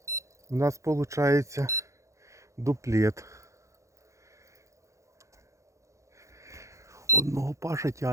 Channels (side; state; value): left; late; 0.15 ms